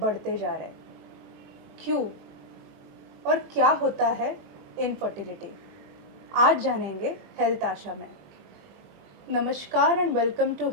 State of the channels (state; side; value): late; left; 20 ms